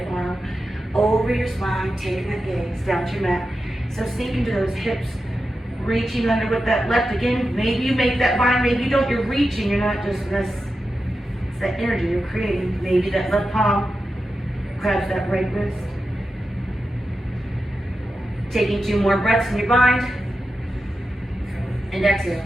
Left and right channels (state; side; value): normal; both; correlation 0.90